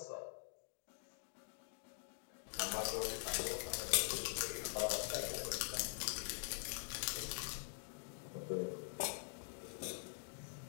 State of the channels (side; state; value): right; silent; digital silence